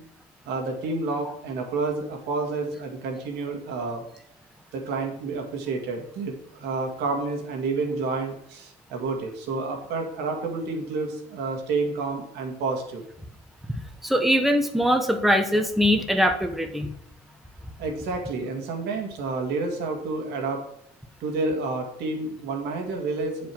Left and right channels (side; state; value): both; normal; correlation 0.54